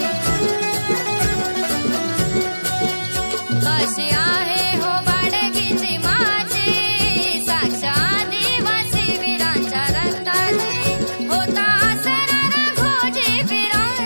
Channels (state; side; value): inverted; both; correlation -1.00